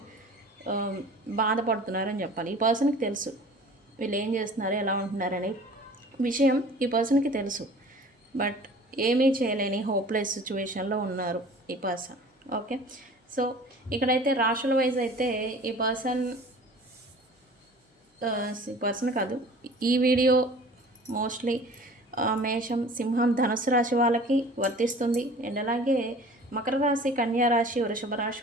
బాధపడుతున్నారని చెప్పాలి. ఈ పర్సన్కి తెలుసు వీళ్ళు ఏం చేస్తున్నారు, ఎలా ఉంటున్నారనే విషయం ఈ పర్సన్కి తెలుసు. బట్ ఏమీ చేయలేని హోప్లెస్ సిచ్యువేషన్లో ఉన్నారు ఈ పర్సన్. ఓకే, సో ఇక్కడైతే రాశుల వైజ్ అయితే ఈ పర్సన్ కాదు, ఈ వీడియో మోస్ట్లీ మేషం, సింహం, ధనుసు రాశి వాళ్ళకి వర్తిస్తుంది. అండ్ అలాగే మకర రాశి, కన్యా రాశి, వృషభ రాశి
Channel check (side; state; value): both; normal; correlation 0.45